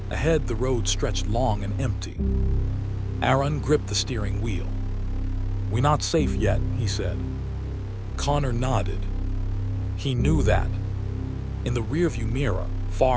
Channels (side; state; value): both; identical; correlation 1.00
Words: Ahead, the road stretched long and empty. Aaron gripped the steering wheel. "We're not safe yet," he said. Connor nodded. He knew that. In the rearview mirror,